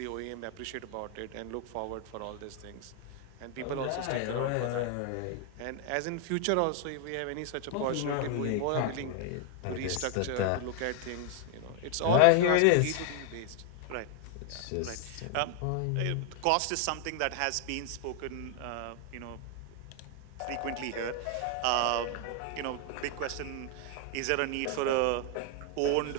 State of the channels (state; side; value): different; both; correlation 0.00